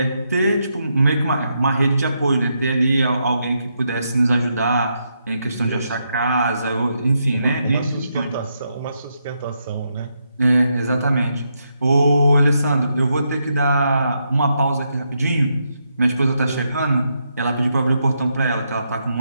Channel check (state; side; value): inverted; both; correlation -0.81